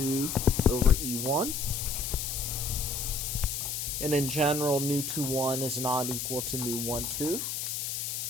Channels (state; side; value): noise; left; hiss, 3 dB below the sound